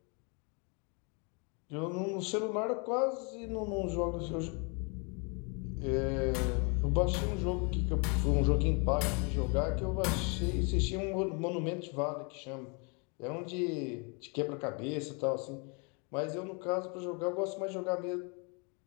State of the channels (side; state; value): right; quieter; 34.2 dB